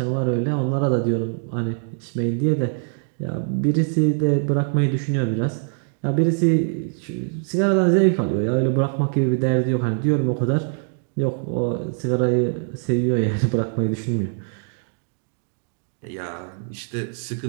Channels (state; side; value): silent; left; 63 dB below the other